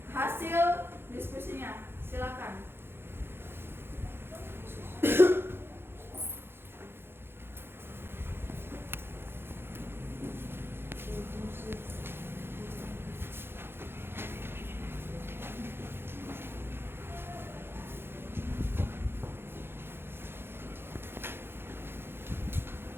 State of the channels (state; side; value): late; left; 0.11 ms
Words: hasil diskusinya. Silakan.